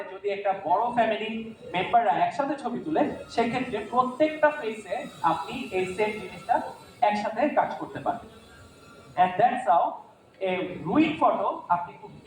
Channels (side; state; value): both; identical; correlation 1.00